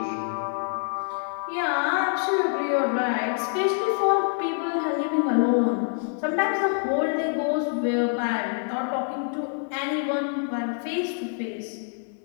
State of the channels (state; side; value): silent; right; 60 dB below the other